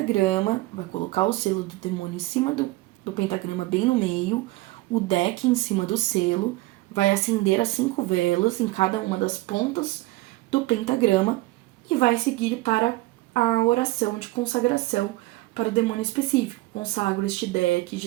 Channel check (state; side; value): quieter; left; 19.8 dB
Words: vai colocar o selo do demônio em cima do pentagrama, bem no meio, o deck em cima do selo, vai acender as 5 velas em cada uma das pontas do pentagrama e vai seguir para a oração de consagração para o demônio específico. Consagro este deck